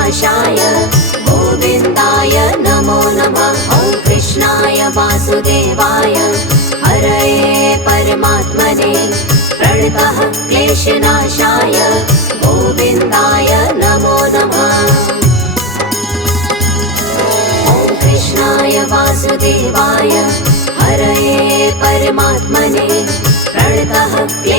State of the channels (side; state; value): both; normal; correlation 0.16